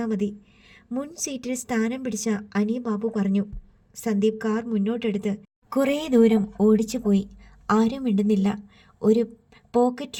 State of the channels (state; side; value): identical; both; correlation 1.00